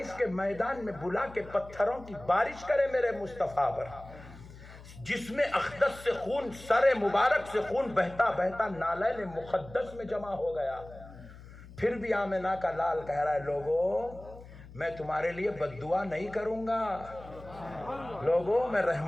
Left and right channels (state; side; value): noise; left; hum, 17 dB below the sound